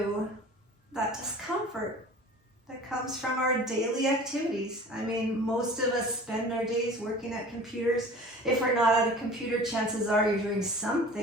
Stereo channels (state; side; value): normal; both; correlation 0.42